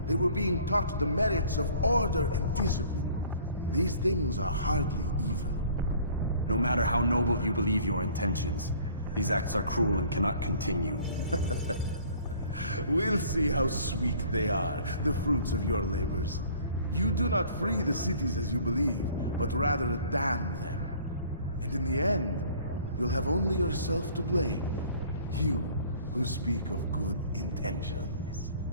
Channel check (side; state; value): both; inverted; correlation -0.52